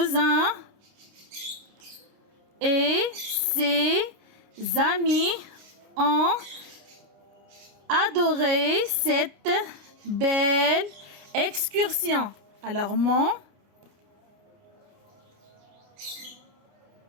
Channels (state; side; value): late; left; 30 ms